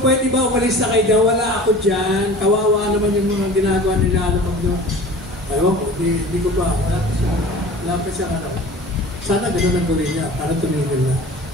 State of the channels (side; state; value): both; normal; correlation 0.40